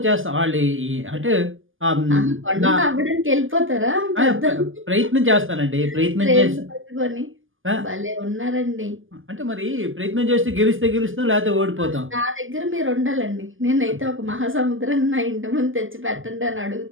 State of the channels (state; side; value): late; left; 0.58 ms